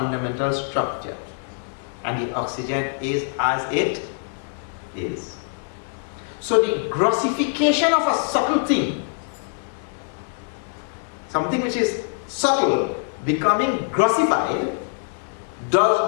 structure. And the oxygen is as it is. So the grossification of a subtle thing, something which is subtle becoming grossified,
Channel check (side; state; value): right; silent; digital silence